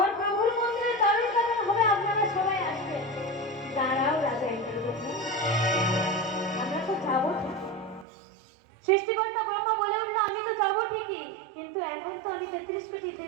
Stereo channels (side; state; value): left; drops out; at 8.1 s